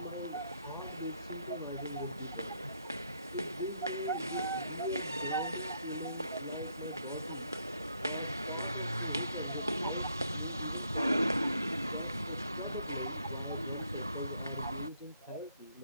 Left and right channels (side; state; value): both; inverted; correlation -0.72